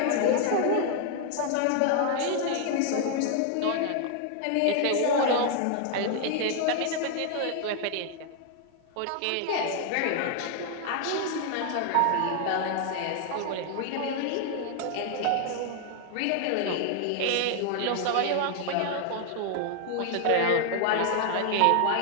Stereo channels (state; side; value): different; both; correlation 0.00